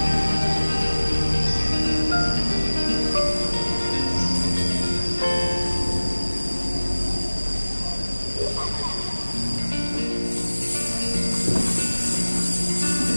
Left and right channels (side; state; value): both; inverted; correlation -1.00